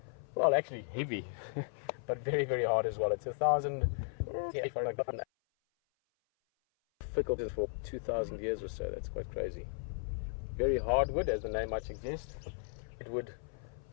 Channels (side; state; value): right; silent; 54 dB below the other